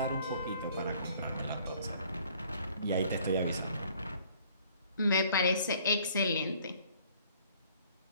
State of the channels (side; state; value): both; inverted; correlation -0.58